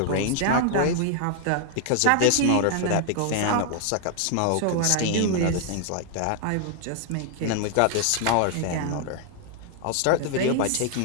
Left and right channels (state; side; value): different; both; correlation 0.00